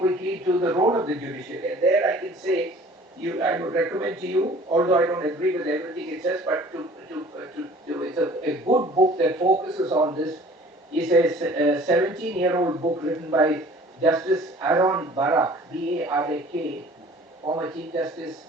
to the role of the judiciary, and there I can say, I would recommend to you, although I don't agree with everything it says, but it's a good book that focuses on this. It's a 17-year-old book written by Justice Aaron Barak, B-A-R-A-K, former Chief Justice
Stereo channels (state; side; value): normal; both; correlation 0.49